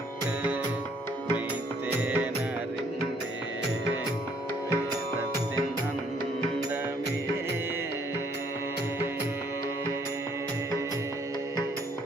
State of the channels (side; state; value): both; normal; correlation 0.65